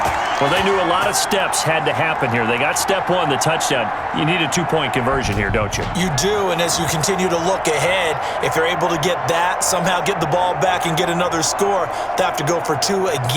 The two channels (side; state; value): both; identical; correlation 1.00